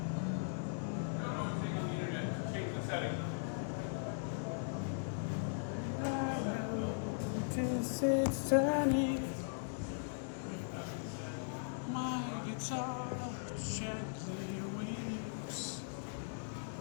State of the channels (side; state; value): right; silent; digital silence